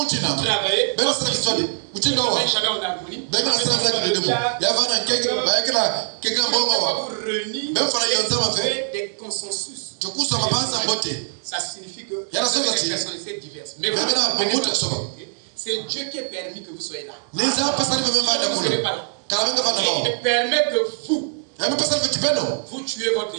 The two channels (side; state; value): left; silent; digital silence